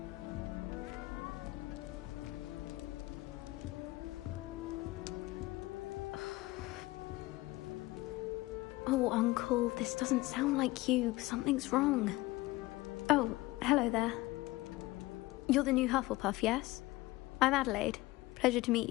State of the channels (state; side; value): quieter; right; 19.8 dB